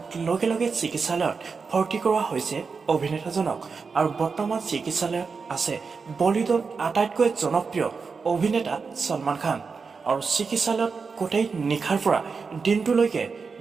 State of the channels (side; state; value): left; quieter; 5.0 dB